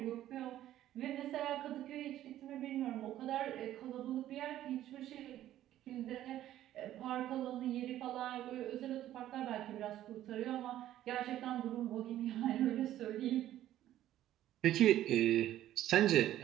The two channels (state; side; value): quieter; left; 12.9 dB